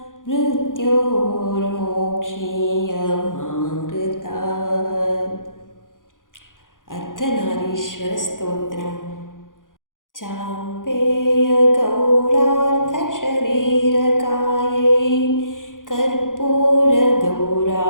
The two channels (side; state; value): right; late; 0.89 ms